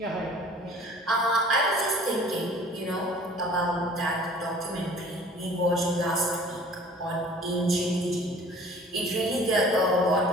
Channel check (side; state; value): both; normal; correlation 0.49